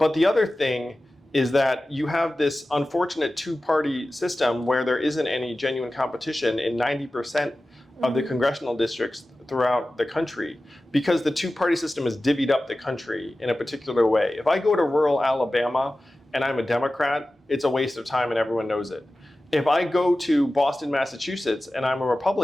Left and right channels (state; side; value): normal; both; correlation 0.95